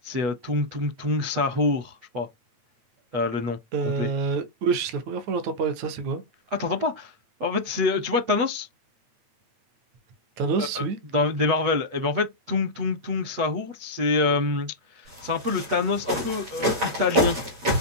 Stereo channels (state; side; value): late; left; 8.2 ms